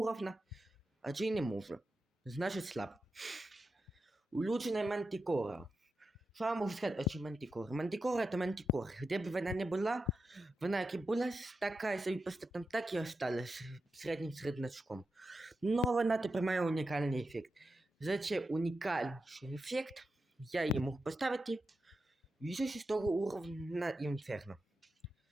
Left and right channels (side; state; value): both; normal; correlation 0.89